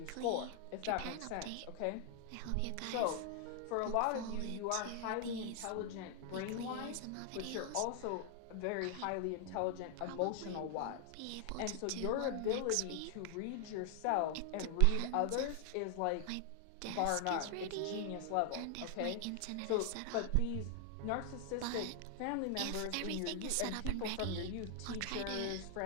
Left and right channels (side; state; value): both; different; correlation 0.00